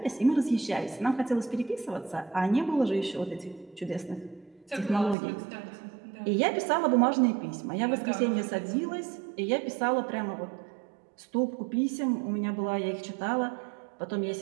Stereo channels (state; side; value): drops out; left; at 5.2 s